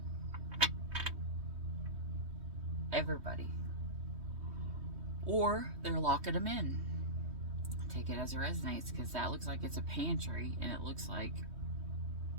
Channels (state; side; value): late; left; 3.2 ms